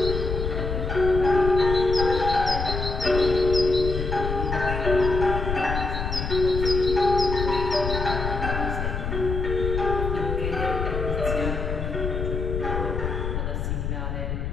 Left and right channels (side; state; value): left; noise; rumble, 3 dB below the sound